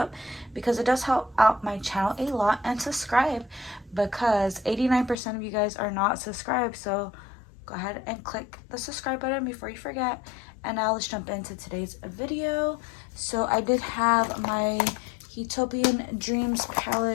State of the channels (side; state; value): right; drops out; at 5.2 s